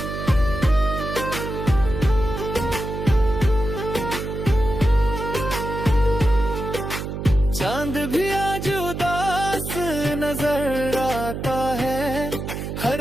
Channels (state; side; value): noise; right; hum, 6 dB below the sound